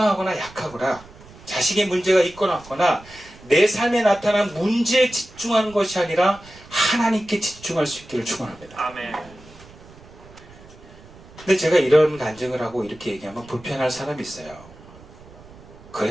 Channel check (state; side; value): noise; right; rumble, 21 dB below the sound